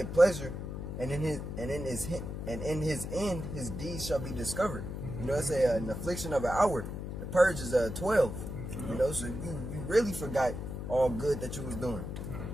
pleasure, and in his end his deeds shall be discovered. You know, it's an affliction of an hour. The purge is 12. You know, so you really forgot all good that you was doing.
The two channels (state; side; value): noise; left; hum, 6 dB below the sound